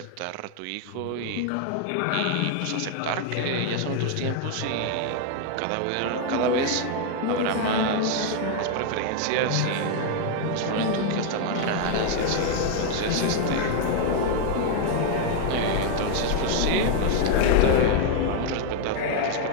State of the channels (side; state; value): both; different; correlation 0.00